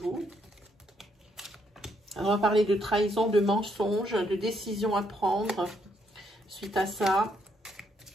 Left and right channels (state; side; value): normal; both; correlation 0.74